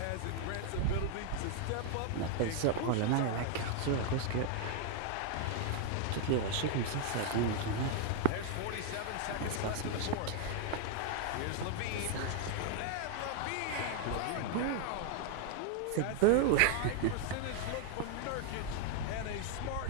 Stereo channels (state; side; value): different; both; correlation 0.00